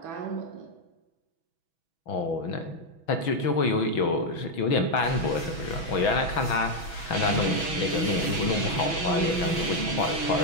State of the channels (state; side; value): late; right; 6.2 ms